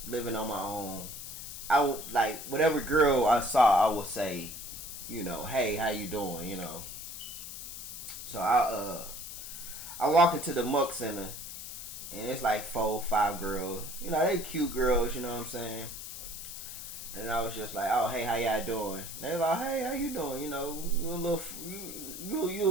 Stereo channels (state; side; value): noise; left; hiss, 9 dB below the sound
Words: living on my own. I would like whatever girl I saw, I would say, you know, hey, how you doing, you know. So I walk into the Muck Center. And it's like 4, 5 girls. You know, they cute girls, you know what I'm saying? And I was just like, oh, hey, how y'all doing? They like, hey, how you doing? You know, you a